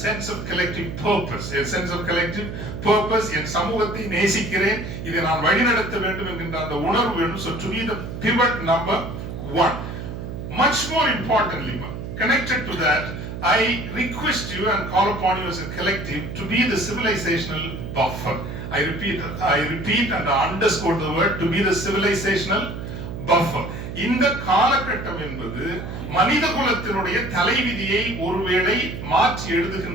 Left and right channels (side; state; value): right; noise; hum, 7 dB below the sound